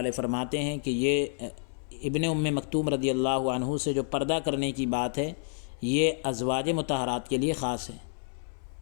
فرماتے ہیں کہ یہ ابن ام مکتوم رضی اللہ عنہ سے جو پردہ کرنے کی بات ہے یہ ازواج مطہرات کے لیے خاص ہے،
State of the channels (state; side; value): silent; right; 58 dB below the other